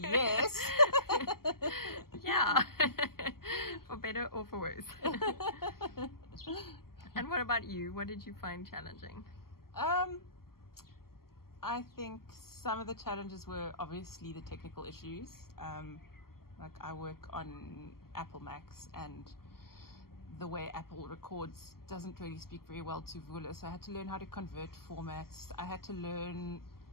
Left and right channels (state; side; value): late; right; 0.93 ms